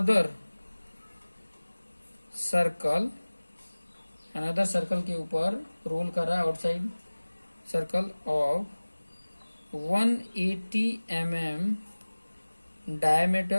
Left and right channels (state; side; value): inverted; both; correlation -1.00